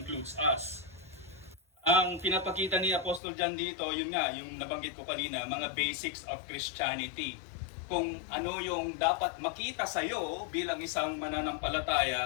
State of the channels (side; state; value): right; drops out; at 3.2 s